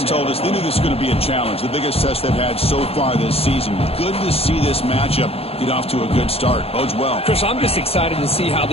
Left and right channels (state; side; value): late; right; 0.29 ms